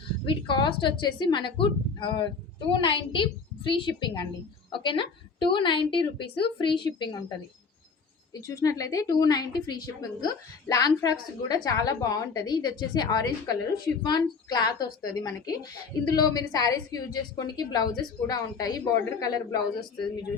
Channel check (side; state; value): right; quieter; 5.0 dB